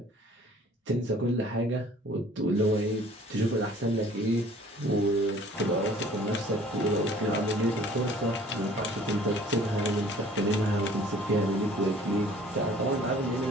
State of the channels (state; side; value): normal; both; correlation 0.52